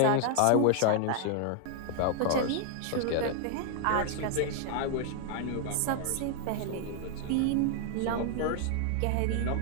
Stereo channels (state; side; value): different; both; correlation 0.00